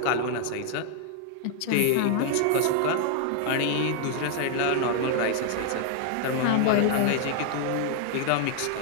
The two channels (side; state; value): both; different; correlation 0.00